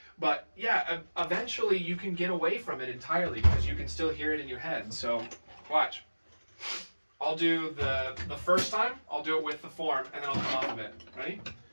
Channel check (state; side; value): inverted; both; correlation -1.00